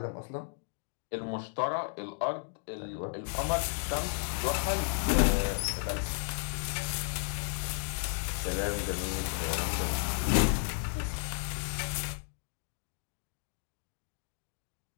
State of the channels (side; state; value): right; silent; digital silence